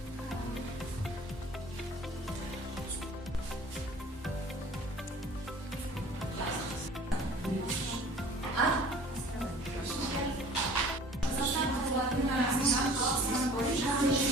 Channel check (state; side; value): normal; both; correlation 0.47